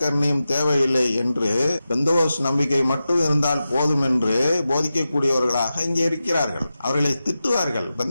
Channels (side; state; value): both; inverted; correlation -0.92